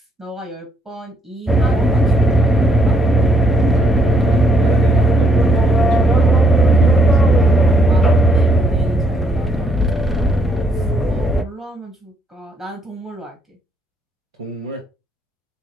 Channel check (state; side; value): normal; both; correlation 0.71